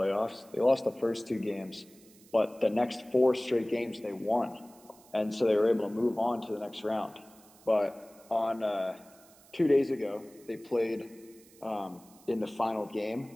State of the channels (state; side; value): noise; right; hiss, 26 dB below the sound